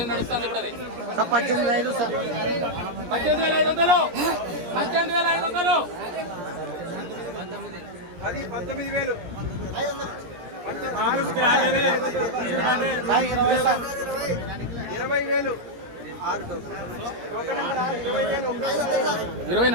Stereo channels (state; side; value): late; left; 17 ms